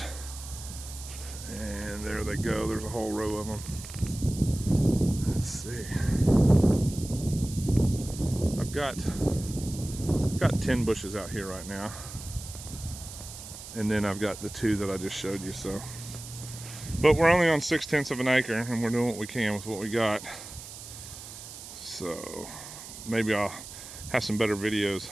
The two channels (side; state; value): right; noise; hiss, 13 dB below the sound